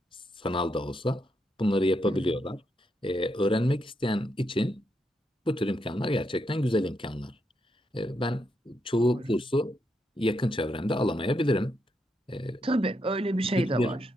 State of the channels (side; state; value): both; normal; correlation 0.81